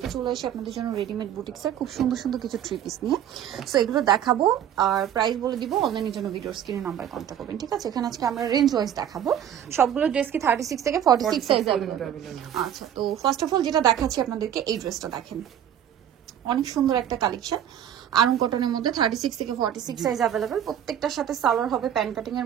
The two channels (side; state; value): left; quieter; 10.0 dB